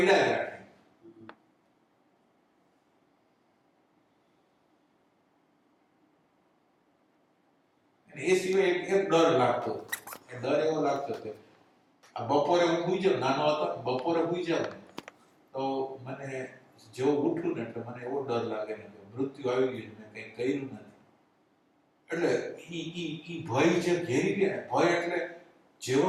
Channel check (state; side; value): identical; both; correlation 1.00